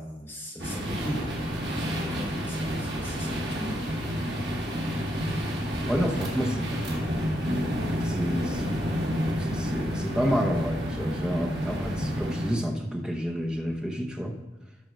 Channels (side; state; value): both; normal; correlation 0.82